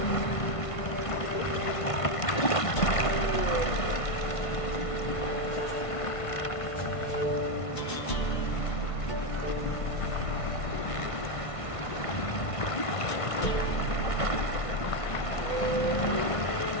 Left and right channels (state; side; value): late; right; 1.5 ms